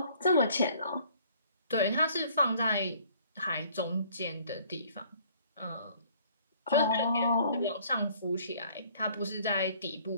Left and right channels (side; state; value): both; inverted; correlation -0.57